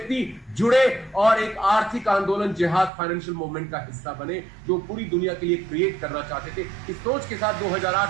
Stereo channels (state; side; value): drops out; left; at 2.9 s